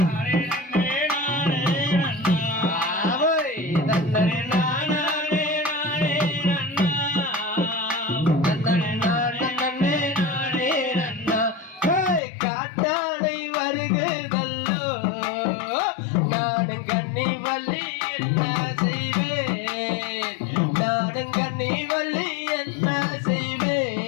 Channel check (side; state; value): right; drops out; at 12.2 s